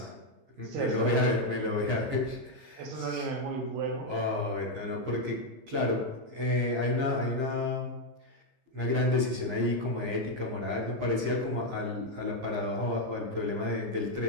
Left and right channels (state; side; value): late; left; 15 ms